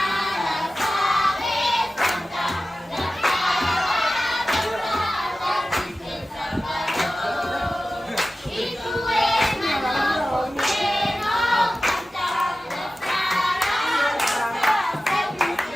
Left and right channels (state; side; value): normal; both; correlation 0.95